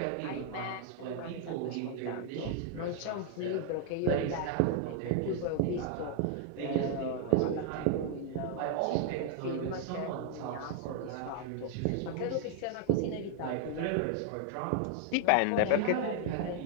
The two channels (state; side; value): different; both; correlation 0.00